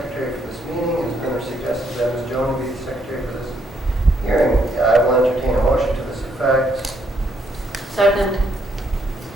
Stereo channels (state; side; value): normal; both; correlation 0.73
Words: for this meeting. It's been suggested that Ms. Jones be the secretary for this hearing. I will entertain a motion to this effect. Second.